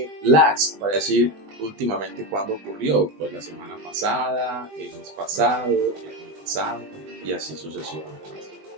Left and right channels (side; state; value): left; late; 20 ms